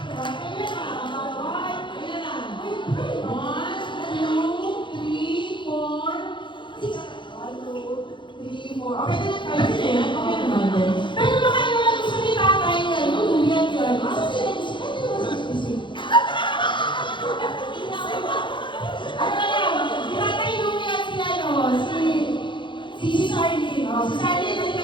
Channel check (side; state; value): right; late; 0.23 ms